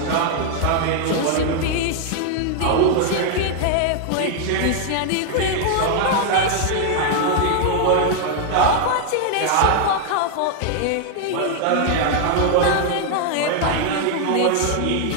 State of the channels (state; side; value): different; both; correlation 0.00